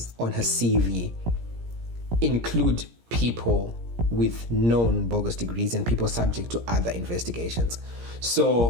on her CV include people with known bogus degrees and people subject to other investigations.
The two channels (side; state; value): left; late; 17 ms